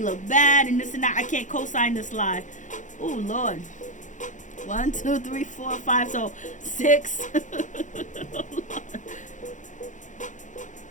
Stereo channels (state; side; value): late; right; 0.36 ms